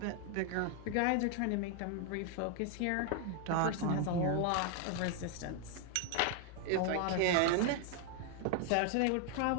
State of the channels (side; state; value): both; different; correlation 0.00